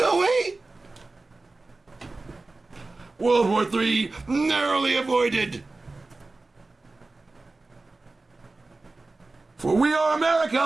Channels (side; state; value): left; quieter; 3.3 dB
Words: we? World War III narrowly avoided. For we are